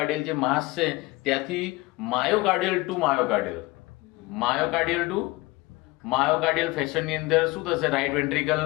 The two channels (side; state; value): right; quieter; 21.4 dB